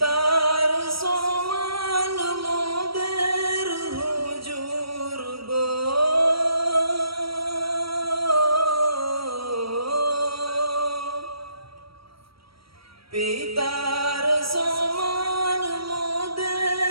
সমান মোদের হুজুর গো, পিতার সমান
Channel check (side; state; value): left; late; 0.75 ms